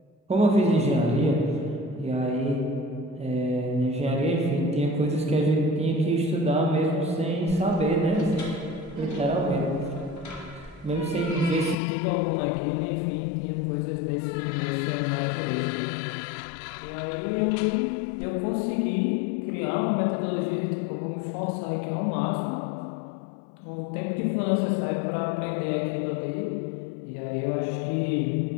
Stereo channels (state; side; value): drops out; right; at 11.8 s